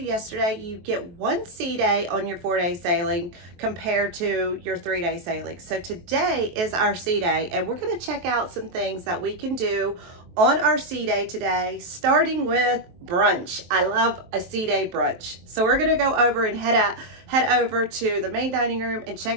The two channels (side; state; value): left; late; 23 ms